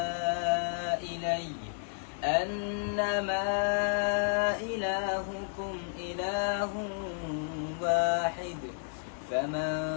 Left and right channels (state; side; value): silent; right; digital silence